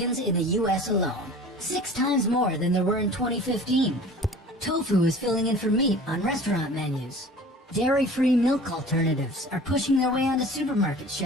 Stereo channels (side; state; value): both; normal; correlation 0.43